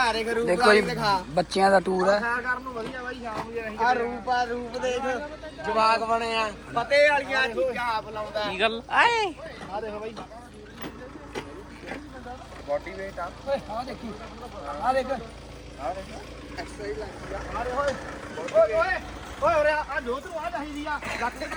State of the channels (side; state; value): both; identical; correlation 1.00